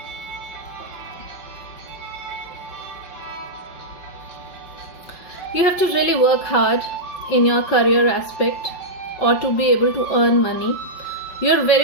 You have to really work hard in your career aspect or to be able to earn money. You're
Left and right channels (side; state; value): right; late; 5.4 ms